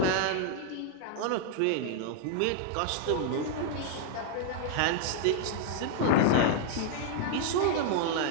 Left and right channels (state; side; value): different; both; correlation -0.01